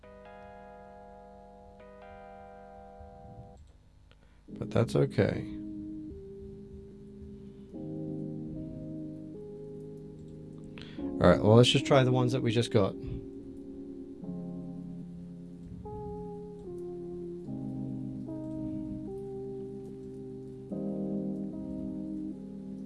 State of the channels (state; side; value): identical; both; correlation 1.00